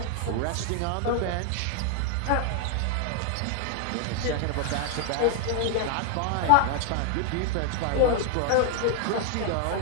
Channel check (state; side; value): different; both; correlation 0.00